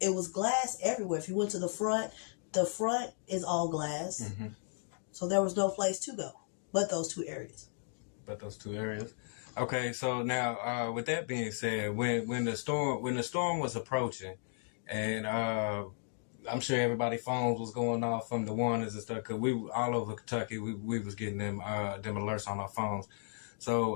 was glass everywhere. If you went to the front is all glass. Mm-hmm. So there was no place to go but those 2 areas. Okay, so now with that being said, when the storm was approaching, and I'm sure everybody's phones was going off from the warnings and stuff, because we all over Kentucky, we was getting them alerts on our phones.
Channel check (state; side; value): silent; right; 54 dB below the other